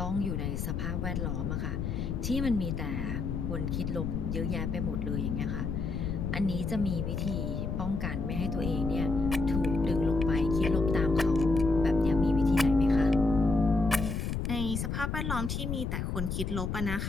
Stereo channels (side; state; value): left; noise; rumble, 2 dB below the sound